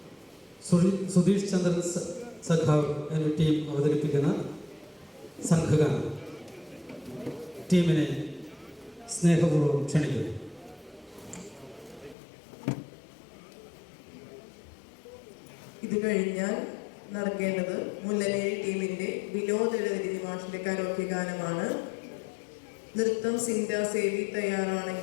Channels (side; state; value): right; drops out; at 12.2 s